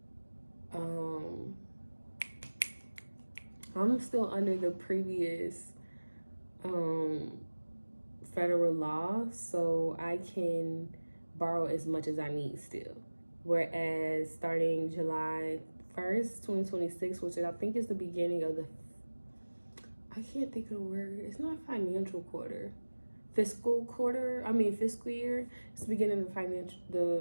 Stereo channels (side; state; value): both; inverted; correlation -1.00